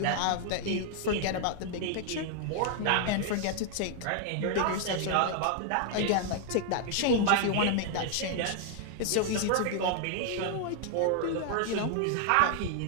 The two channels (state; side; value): different; both; correlation 0.00